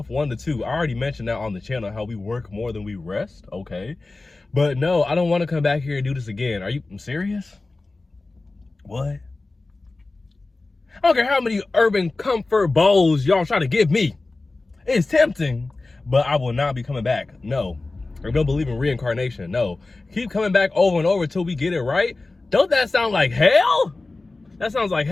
1 to 2. I already mentioned that on the channel, how we work more than we rest, okay? But no, I don't want to come back here and do this again. Are you serious? What? I don't care how many urban comfort bowls y'all try to give me. It's tempting, but I will not be coming back. No. I don't believe in reincarnation. No. Keep coming back over and over until we get it right. Don't that sound like hell? That sounds like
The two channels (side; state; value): right; quieter; 3.3 dB